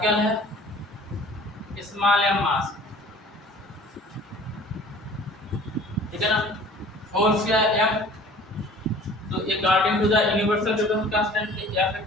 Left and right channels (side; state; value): both; normal; correlation 0.47